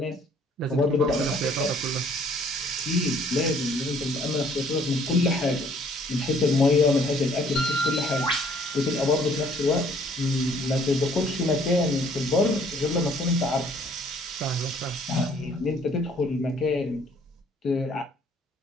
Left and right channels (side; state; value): both; normal; correlation 0.60